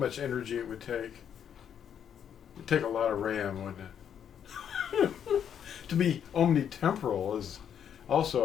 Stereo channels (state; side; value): quieter; right; 8.6 dB